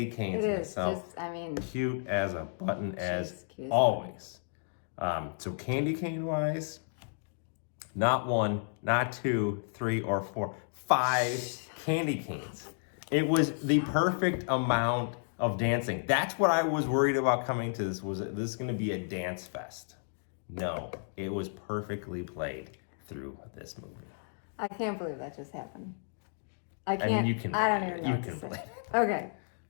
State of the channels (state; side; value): silent; right; digital silence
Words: canes in itself. Cute as a button as always. So candy cane wise, not 1, not 2, 3, or 4, 5 candy canes. It was the perfect amount of dancing. That's what I was worried about coming to this. Was this going to be a dance fest? No, it was perfectly played through this movie. I can't believe that just happened. I mean, you can. I don't even know. You can believe it. Okay,